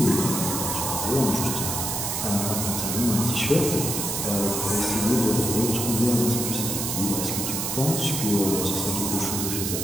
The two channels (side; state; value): right; noise; hiss, 2 dB below the sound